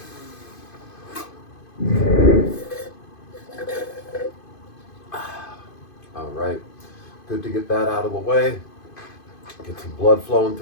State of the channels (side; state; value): right; late; 2.5 ms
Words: All right, good to get that out of the way. Get some blood flowing